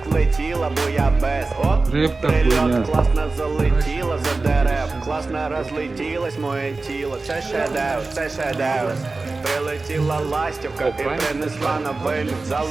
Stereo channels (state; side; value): quieter; left; 3.6 dB